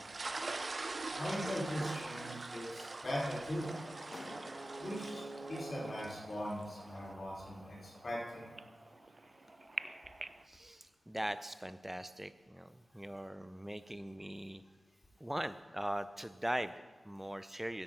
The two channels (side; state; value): both; normal; correlation 0.96